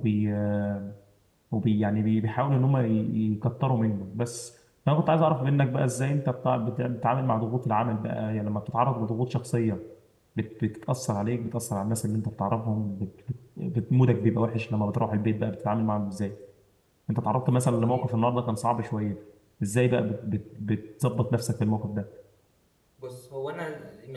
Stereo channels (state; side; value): identical; both; correlation 1.00